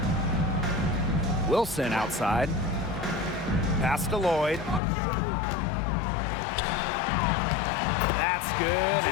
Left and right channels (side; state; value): right; drops out; at 4.8 s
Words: Wilson outside. Pass to Lloyd. That's good,